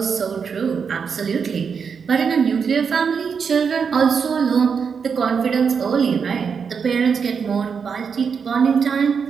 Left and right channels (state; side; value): quieter; left; 6.2 dB